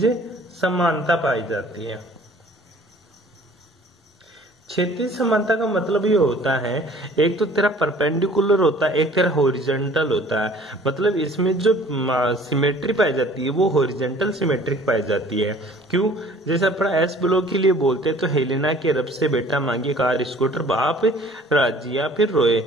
समानता पाई जाती है। क्षैतिज समानता का मतलब ये होता है, एक तो तेरा परपेंडिकुलर होता है, एक तेरा हॉरिजॉन्टल होता है। मतलब इसमें जो सिमेट्री पाई जाती है वो हॉरिजॉन्टल सिमेट्रिक पाई जाती है। क्यों? जैसे अपना एस ब्लॉक के लिए बोलते हैं तो हेलेना के रब से बेटा मांगे कार स्कूटर बाप राजी या फिर रोए,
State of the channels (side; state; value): both; normal; correlation 0.52